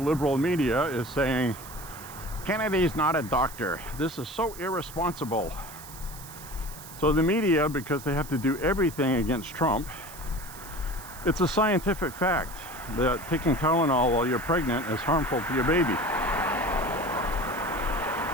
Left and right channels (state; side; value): noise; right; hiss, 16 dB below the sound